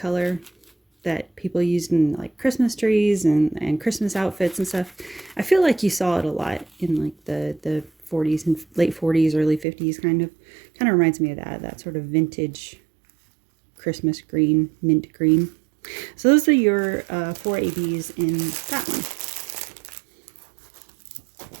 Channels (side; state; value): left; drops out; at 9.7 s